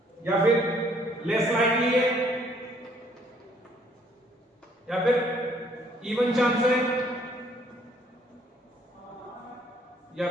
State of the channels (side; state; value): both; normal; correlation 0.64